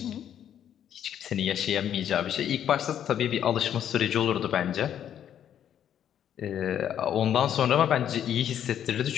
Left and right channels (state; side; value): quieter; right; 9.9 dB